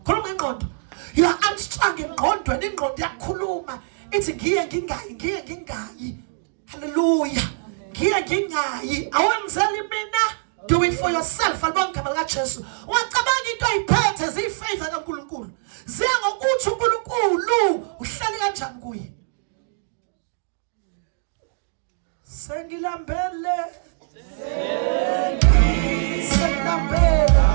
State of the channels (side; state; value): left; silent; digital silence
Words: khona ngengqondo. You are unstrung engqondweni, ingqondo yakhuluma ithi ngiye ngingayi. Hallelujah. Ngiye ngingayi awenzeli mina. Do it for yourself. Alibonga igama likaJesu. Ungacabanga into ayiphethe ziyifavor kaNkulunkulu. Ziya ngokuthi uNkulunkulu uhleli kanjani kuye. Sengilambele. Sengilambele.